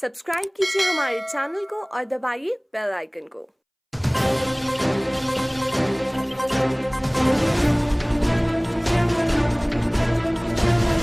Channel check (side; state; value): both; identical; correlation 1.00